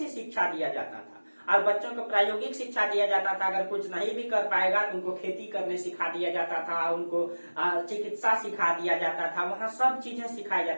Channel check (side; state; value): both; inverted; correlation -1.00